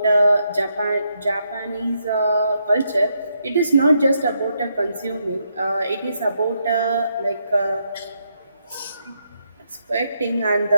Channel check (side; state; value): both; inverted; correlation -0.79